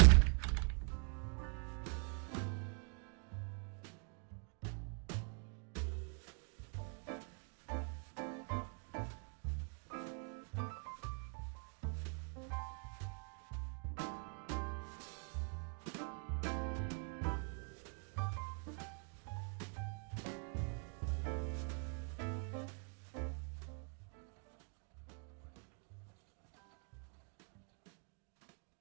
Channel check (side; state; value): left; quieter; 39.4 dB